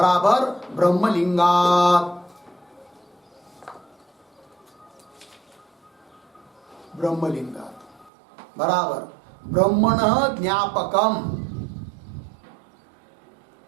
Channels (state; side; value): drops out; left; at 8.1 s